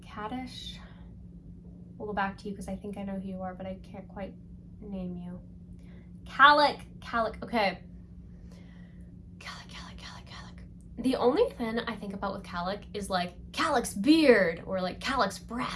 Kaddish. We'll go back to you because I think I know who you are, but I can't quite name you. Calic. Okay. Calic. The only thing I think about with Calic is like Calic's beard or like Calic's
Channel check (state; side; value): identical; both; correlation 1.00